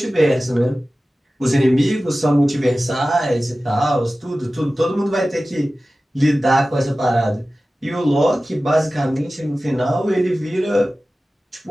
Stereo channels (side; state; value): both; normal; correlation 0.96